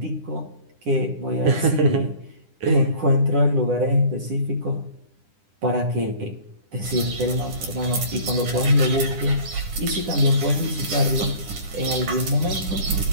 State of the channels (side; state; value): left; late; 10 ms